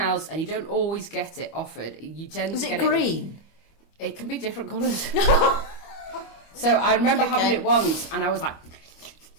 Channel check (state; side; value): late; right; 25 ms